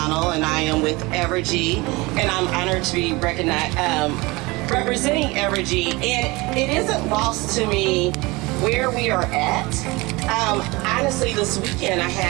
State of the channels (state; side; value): quieter; left; 23.4 dB